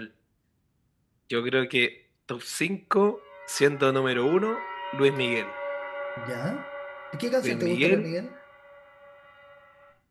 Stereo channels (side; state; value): both; identical; correlation 1.00